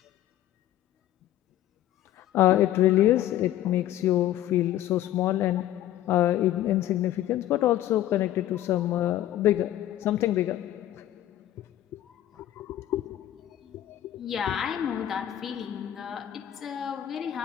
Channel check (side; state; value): right; quieter; 12.8 dB